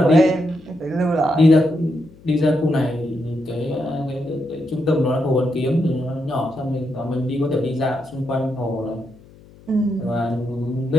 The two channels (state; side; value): noise; left; hum, 24 dB below the sound